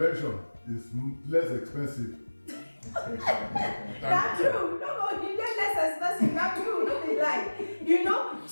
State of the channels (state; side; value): inverted; both; correlation -1.00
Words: is less expensive. That's true. No, you get less expensive. That's true. No be lie. You know.